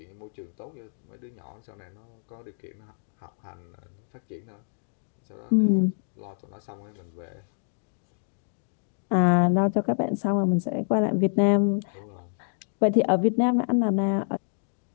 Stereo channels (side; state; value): right; silent; digital silence